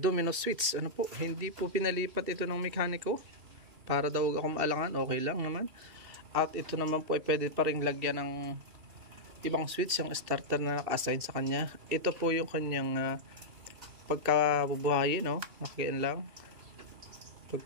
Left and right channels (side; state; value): left; late; 2.7 ms